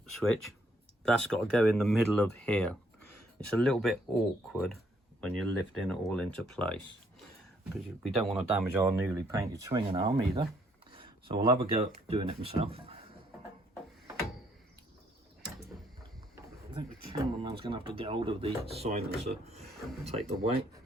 switch? That's got to go in the middle of here. It's a little bit awkward when you're lifting it all into place, because we don't want to damage our newly painted swinging arm either. So I'll have a go at doing it myself. I think the cameraman's going to have to get hold of the silencer and take the weight.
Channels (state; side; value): normal; both; correlation 0.69